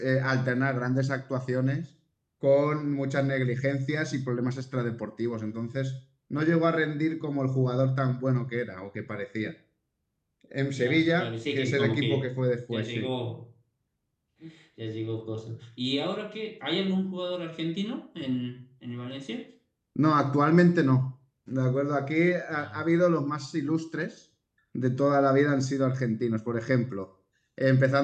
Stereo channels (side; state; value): both; identical; correlation 1.00